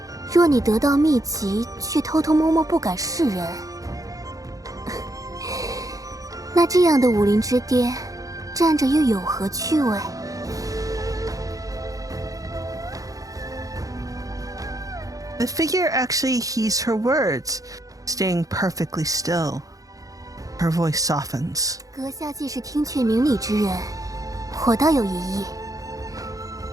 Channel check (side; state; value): left; late; 0.17 ms